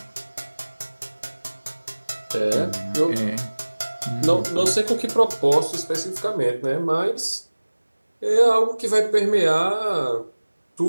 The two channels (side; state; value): both; inverted; correlation -1.00